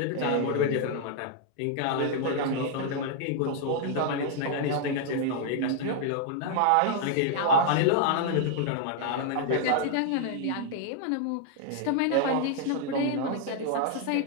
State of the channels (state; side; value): different; both; correlation 0.00